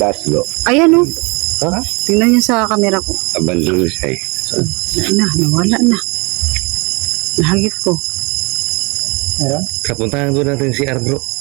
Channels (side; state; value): left; quieter; 29.0 dB